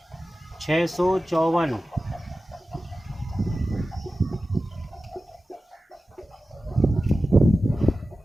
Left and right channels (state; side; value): normal; both; correlation 0.95